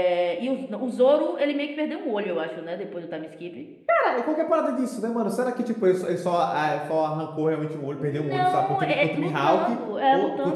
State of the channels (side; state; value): both; identical; correlation 1.00